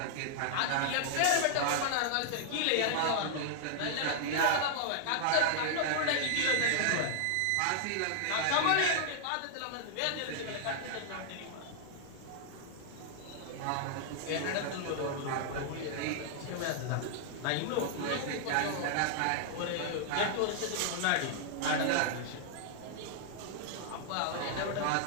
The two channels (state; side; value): different; both; correlation -0.01